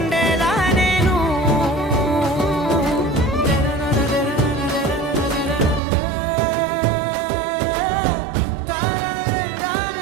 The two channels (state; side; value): drops out; left; at 5.8 s